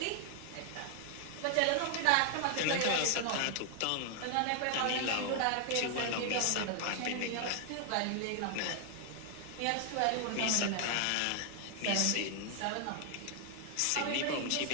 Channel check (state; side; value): different; both; correlation 0.00